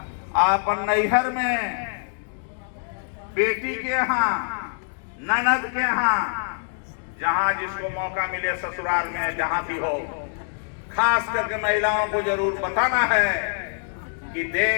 आप नैहर में बेटी के यहाँ, ननद के यहाँ, जहां जिसको मौका मिले ससुराल में जहां भी हो, खास करके महिलाओं को जरूर बताना है कि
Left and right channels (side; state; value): right; silent; digital silence